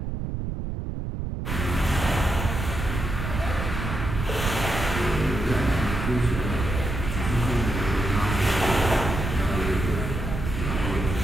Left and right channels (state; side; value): noise; right; rumble, 4 dB below the sound